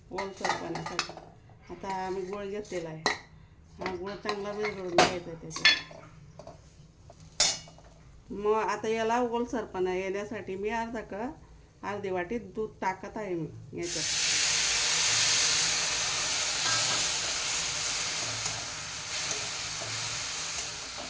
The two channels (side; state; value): both; identical; correlation 1.00